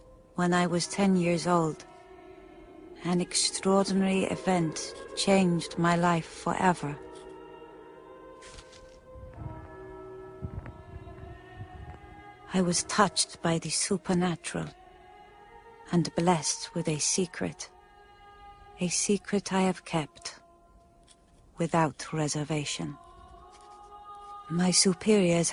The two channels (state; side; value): identical; both; correlation 1.00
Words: When I was 10 years old, an extraordinary event changed my life forever. I was touched by the supernatural and blessed with a secret I have kept without reservation. My superiors